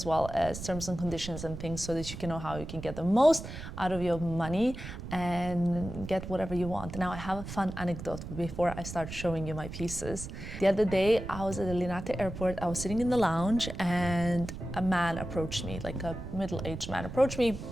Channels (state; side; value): noise; right; rumble, 9 dB below the sound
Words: well as terms and conditions and things so that you can know how you can get the most out of your money and get whatever you want. Now I have a fun anecdote before I start showing you my pieces. The other day I was at the Linate airport, I was sitting in the lounge and a man approached me, like a middle-aged man approached me,